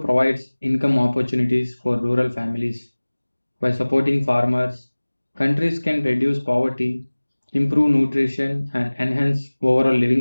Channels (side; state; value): both; inverted; correlation -1.00